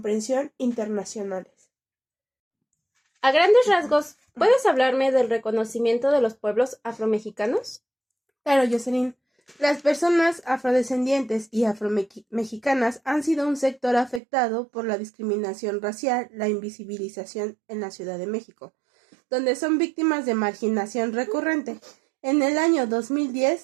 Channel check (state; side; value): drops out; left; at 14.2 s